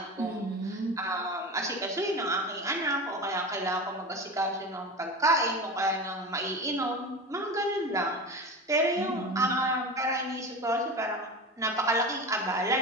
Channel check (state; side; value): normal; both; correlation 0.28